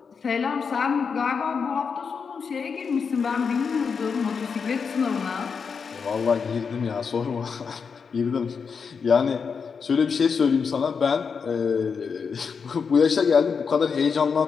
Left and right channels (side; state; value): right; quieter; 5.8 dB